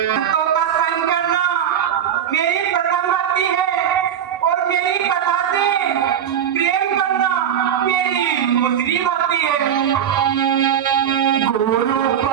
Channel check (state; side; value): quieter; left; 9.2 dB